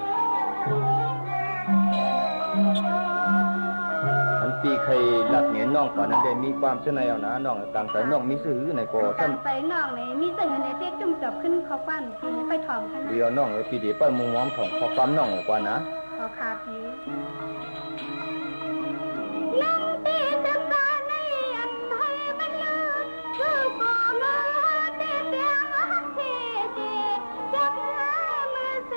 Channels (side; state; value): both; inverted; correlation -1.00